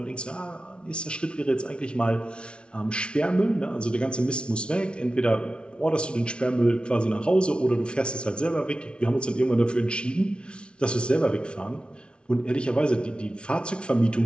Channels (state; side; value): late; right; 0.057 ms